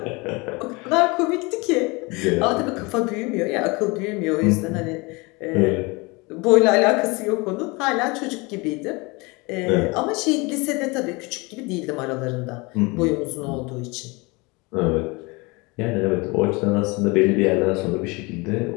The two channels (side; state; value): right; quieter; 26.3 dB